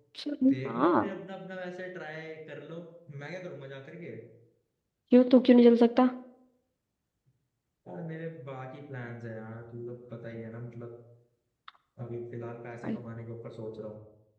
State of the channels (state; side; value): identical; both; correlation 1.00